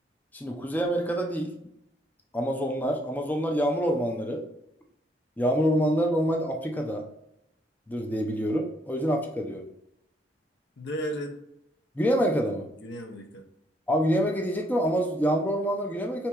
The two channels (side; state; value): both; normal; correlation 0.70